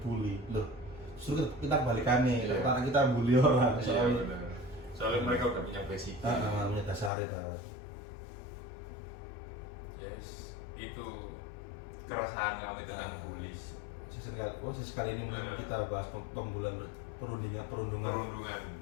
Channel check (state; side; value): drops out; right; at 7.1 s